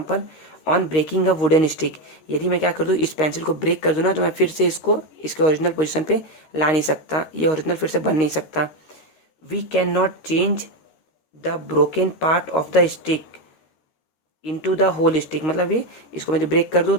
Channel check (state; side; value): late; right; 13 ms